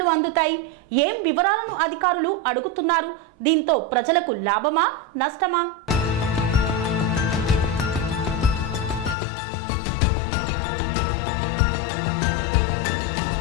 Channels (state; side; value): drops out; right; at 9.2 s